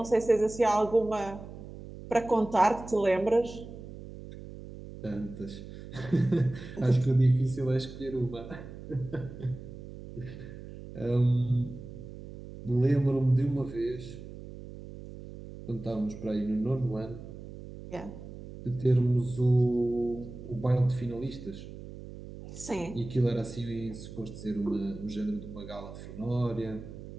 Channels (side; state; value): right; noise; hum, 13 dB below the sound